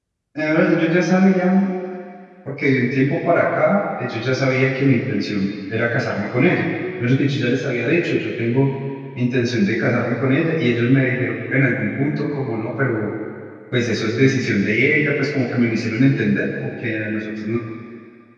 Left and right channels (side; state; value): both; identical; correlation 1.00